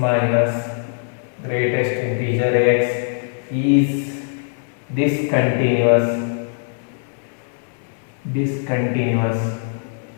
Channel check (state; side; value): silent; right; 62 dB below the other